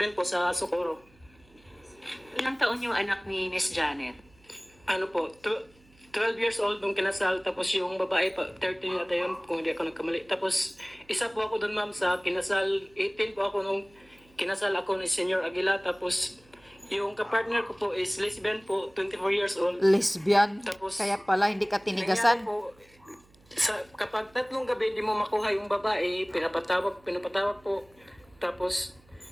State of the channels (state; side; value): noise; right; hum, 29 dB below the sound